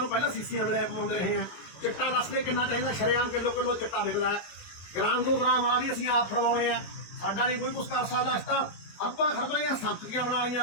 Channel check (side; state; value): right; late; 21 ms